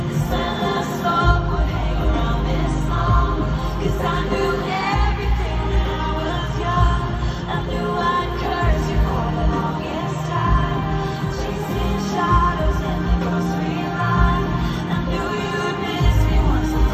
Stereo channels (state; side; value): identical; both; correlation 1.00